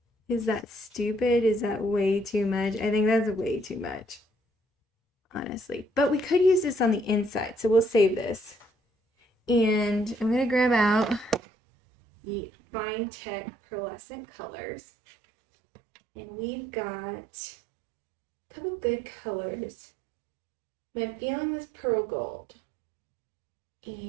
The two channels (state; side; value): drops out; left; at 11.4 s